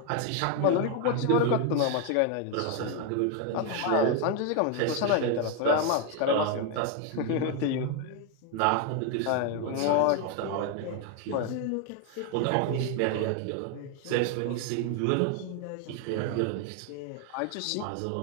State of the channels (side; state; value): both; different; correlation 0.01